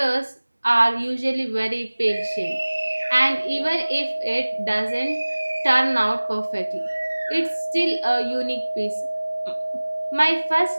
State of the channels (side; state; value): both; inverted; correlation -1.00